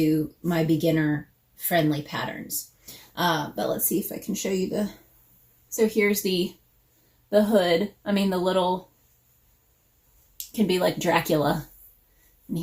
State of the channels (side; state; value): both; identical; correlation 1.00